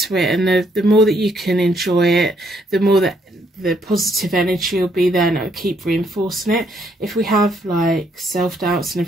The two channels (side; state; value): both; normal; correlation 0.71